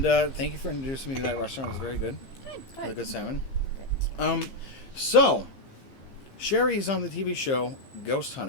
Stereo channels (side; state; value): right; late; 15 ms